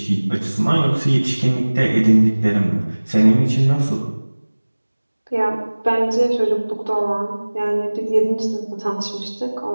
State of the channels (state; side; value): inverted; both; correlation -1.00